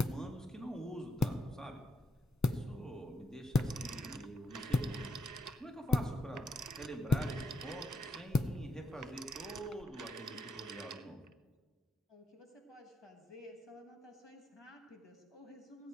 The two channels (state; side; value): normal; both; correlation 0.80